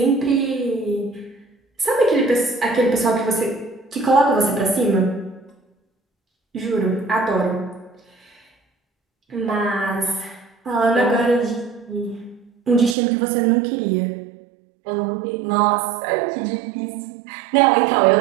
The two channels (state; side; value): drops out; left; at 13.0 s